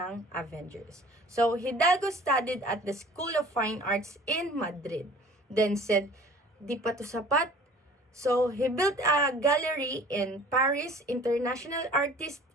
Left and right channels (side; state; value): both; normal; correlation 0.48